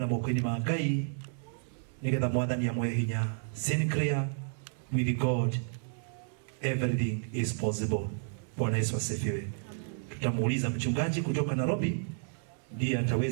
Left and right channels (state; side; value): silent; left; 57 dB below the other